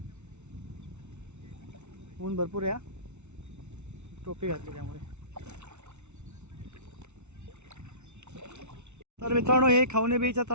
ऊन भरपूर आहे. टोपी घातली त्यामुळे. तर मित्रांनो हे खवणे बीचात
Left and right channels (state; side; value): late; left; 0.82 ms